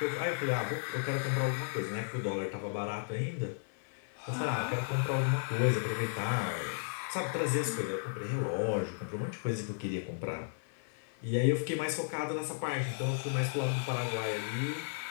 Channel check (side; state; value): right; silent; 55 dB below the other